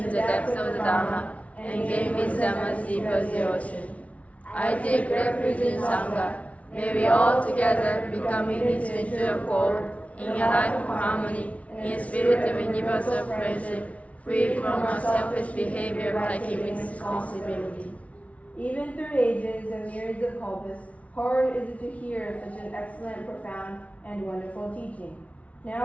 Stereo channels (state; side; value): late; right; 0.066 ms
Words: the depths of the Dhamma and gain wisdom as deep as the ocean. I take refuge in Sangha. May we all together become unity into accord, in a life of harmony, in a spirit of universal friendship, free from our selfish behavior by keeping responsibility. Even through ages and myriads of kalpas, hard is it to hear such an excellent, profound, and wonderful teaching.